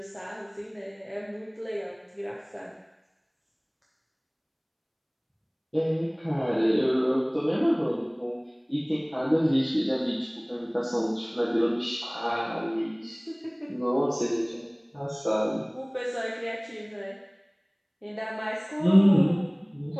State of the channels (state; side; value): identical; both; correlation 1.00